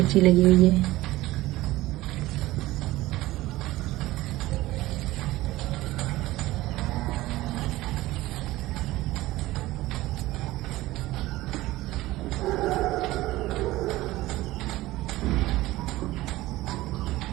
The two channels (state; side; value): quieter; left; 17.7 dB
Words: लगी हुई है।